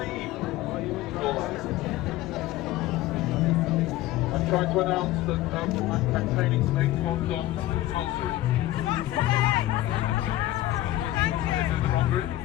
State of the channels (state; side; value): quieter; right; 15.5 dB